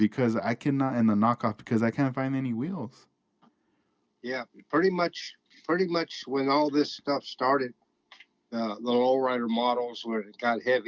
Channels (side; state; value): both; identical; correlation 1.00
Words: I cannot and the knockoff because I can't find any wheels. Yeah. Pretty much when all this stuff started, the lowrider models when it got